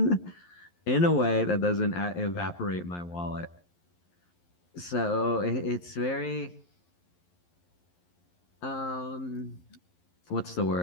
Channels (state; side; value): late; right; 11 ms